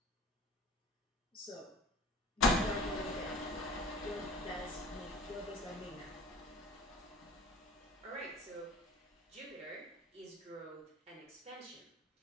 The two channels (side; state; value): both; normal; correlation 0.43